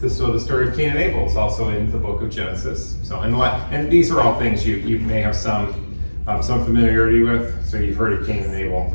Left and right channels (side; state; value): both; inverted; correlation -1.00